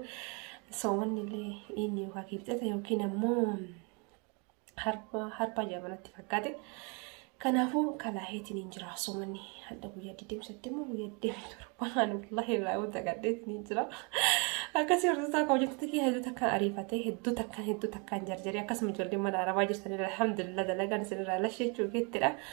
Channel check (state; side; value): quieter; left; 33.2 dB